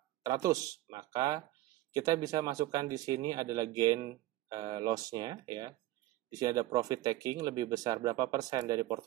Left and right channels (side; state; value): left; quieter; 15.9 dB